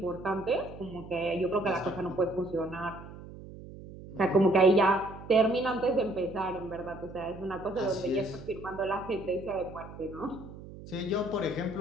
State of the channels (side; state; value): right; noise; hum, 15 dB below the sound